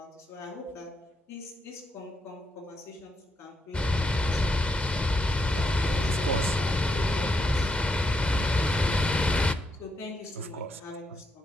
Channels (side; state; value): both; normal; correlation 0.80